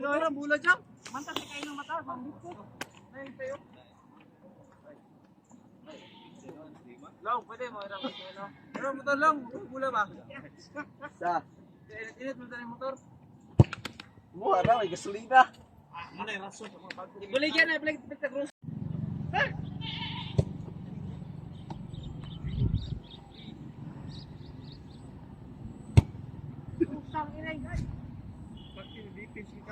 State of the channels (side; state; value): both; identical; correlation 1.00